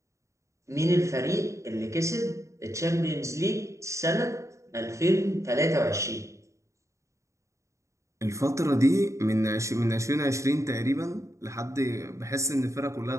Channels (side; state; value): left; late; 0.15 ms